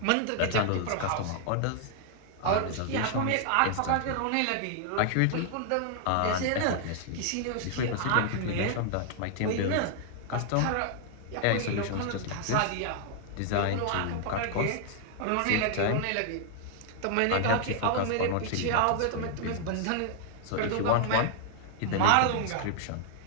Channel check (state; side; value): different; both; correlation 0.00